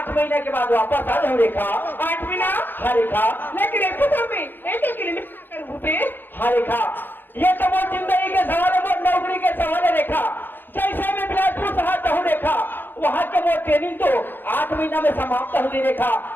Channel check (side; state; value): right; late; 0.095 ms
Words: महीने के बाद वापस आ जाऊँ रेखा। 8 महीना? हाँ रेखा। लेकिन एक तो में एक किलोमीटर भूपे। हाँ रेखा ये तो वो जिंदगी के सवाल है, वो नौकरी के सवाल है रेखा। जैसे मैं बिलासपुर शहर जाऊँ रेखा, वहाँ के वो ट्रेनिंग तो 8 महीना में समाप्त हो गई रेखा।